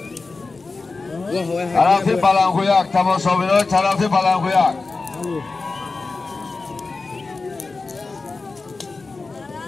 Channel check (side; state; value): right; quieter; 3.9 dB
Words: طرف بلنگو یک تماشابین های طرف بلنگو یک